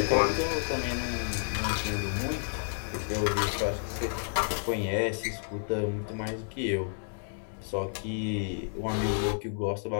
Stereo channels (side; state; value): right; silent; digital silence